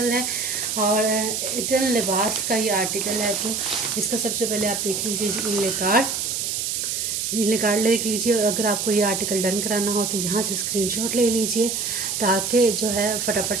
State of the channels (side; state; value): right; noise; hiss, 1 dB below the sound